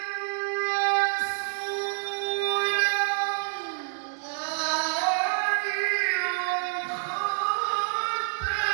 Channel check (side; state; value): left; silent; digital silence